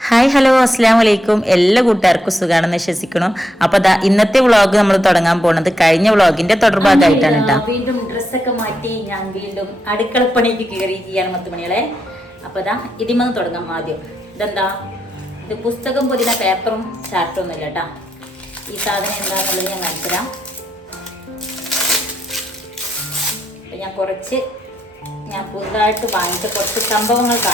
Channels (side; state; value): both; normal; correlation 0.82